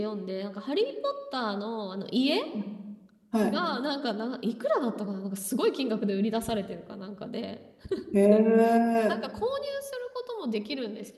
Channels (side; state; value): both; identical; correlation 1.00